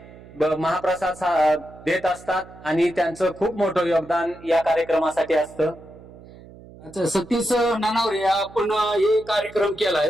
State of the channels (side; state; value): right; noise; hum, 20 dB below the sound